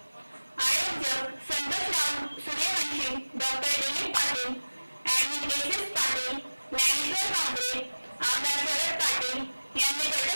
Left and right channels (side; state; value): both; inverted; correlation -1.00